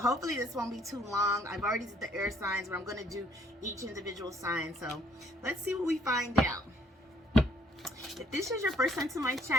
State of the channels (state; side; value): normal; both; correlation 0.64